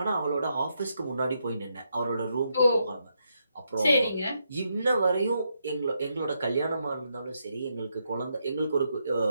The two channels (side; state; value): both; inverted; correlation -0.80